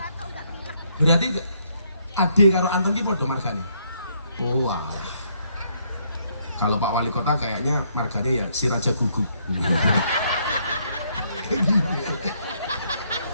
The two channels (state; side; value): inverted; both; correlation -0.71